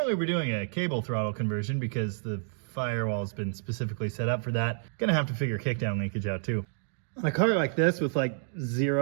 we're doing a cable throttle conversion because the firewall's been specifically set up for that. Gonna have to figure kickdown linkage out too. On a car like this with like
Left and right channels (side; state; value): left; silent; digital silence